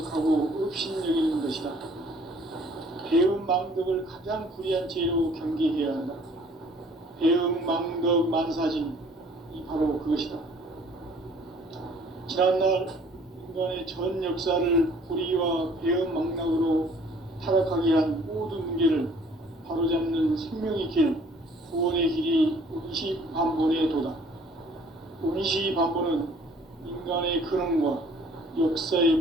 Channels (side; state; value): both; normal; correlation 0.56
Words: 업신여기는 것이다. 배음 망덕을 가장 불의한 죄로 경계해야 한다. 배음 망덕 만사진이 바로 그것이다. 지난날 인간의 전 역사를 불의와 배음 망락으로 타락하게 한 모든 문제를 바로잡는 생명의 길, 구원의 길이 운시반본의 도다. 운시반본은 인간의 근원과